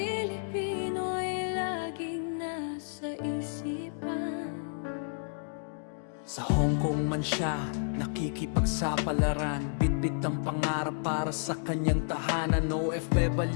laging nasa isipan. Sa Hong Kong man siya nakikipagsapalaran, bitbit ang pangarap para sa kanyang tahanan.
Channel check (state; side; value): silent; right; digital silence